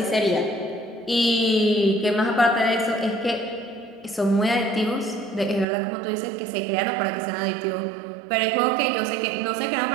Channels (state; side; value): drops out; left; at 5.7 s